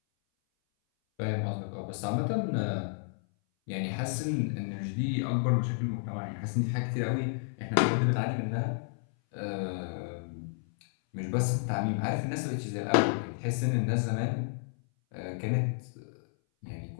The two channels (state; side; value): silent; right; 57 dB below the other